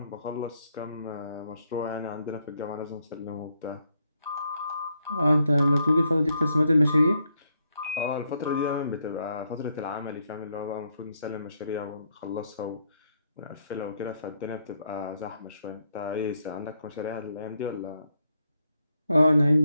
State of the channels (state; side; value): inverted; both; correlation -0.77